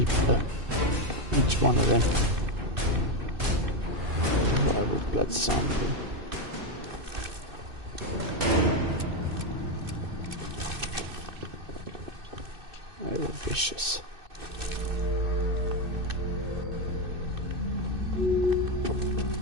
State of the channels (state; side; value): late; left; 2.6 ms